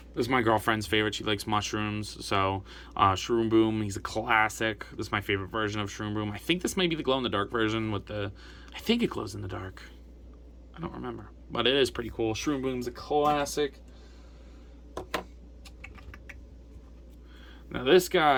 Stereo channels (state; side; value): identical; both; correlation 1.00